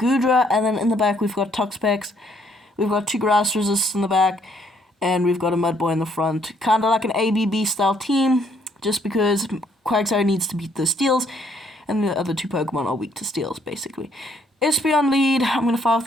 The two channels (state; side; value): normal; both; correlation 0.67